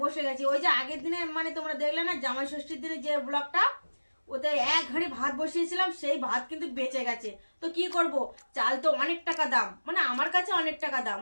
বসে গেছি। ওই যে আগের দিনে মানে তোমরা দেখলে না জামাই ষষ্ঠীর দিনে যে ব্লগটা, ওতে এক হাঁড়ি ভাত বসিয়েছিলাম, সেই ভাত কিন্তু বেঁচে গেছে। তো কি করব, চাল তো অনেক টাকা দাম, মানে আমার কাছে অনেক টাকা দাম।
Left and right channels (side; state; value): both; inverted; correlation -1.00